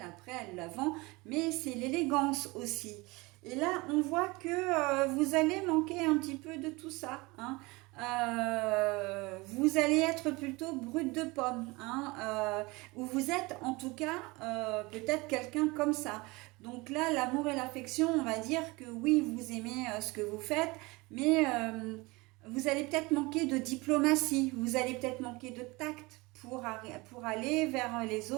après, elle la vend, mais c'est l'élégance aussi. Et là, on voit que vous allez manquer un petit peu de tout ça, hein. Vous allez être plutôt brut de pomme, hein, ou vous êtes en tout cas peut-être quelqu'un comme ça. Donc là, l'amour et l'affection, on va dire que oui, vous aimez ce que vous faites, mais vous allez peut-être manquer de diplomatie, vous allez peut-être manquer de tact pour aller vers les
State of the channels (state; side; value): quieter; left; 23.9 dB